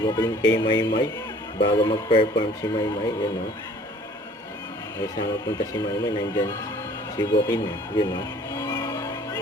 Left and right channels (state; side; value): normal; both; correlation 0.53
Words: kay Maymay bago mag-perform si Maymay, yun, no? Ay sama punta si Maymay, nandyan si Joaquin, yun, no?